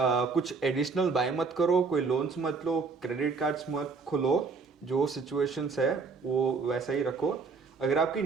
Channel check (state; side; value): quieter; left; 4.7 dB